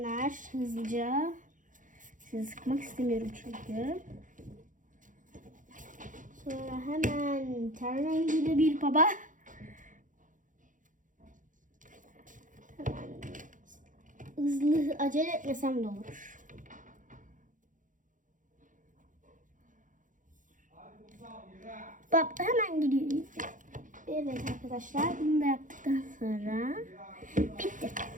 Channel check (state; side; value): late; left; 0.38 ms